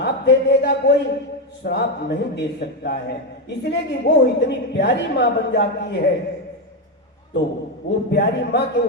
दे देगा कोई? श्राप नहीं दे सकता है, इसलिए कि वो इतनी प्यारी माँ बन जाती है, तो वो प्यारी माँ के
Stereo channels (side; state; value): both; normal; correlation 0.08